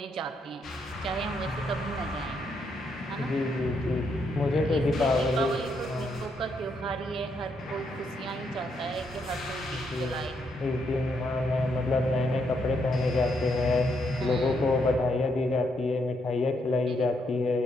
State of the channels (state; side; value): normal; both; correlation 0.77